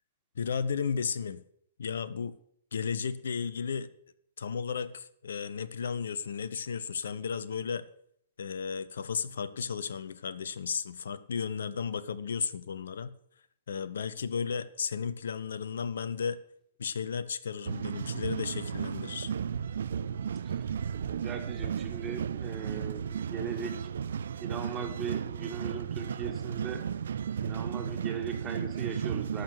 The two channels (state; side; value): inverted; both; correlation -0.64